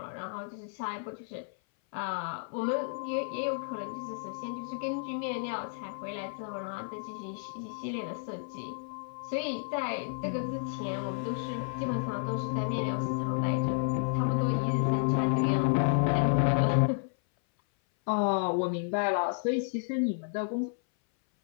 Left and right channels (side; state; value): right; silent; 57 dB below the other